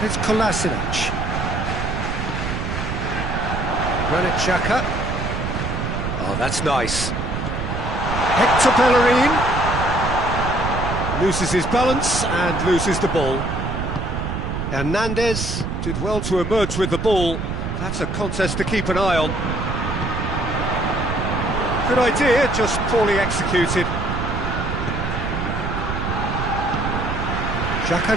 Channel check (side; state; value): right; noise; rumble, 3 dB below the sound